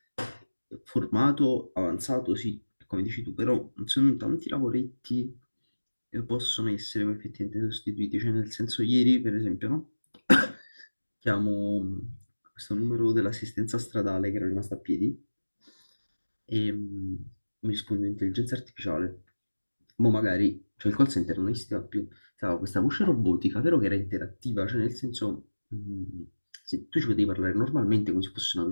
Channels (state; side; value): inverted; both; correlation -1.00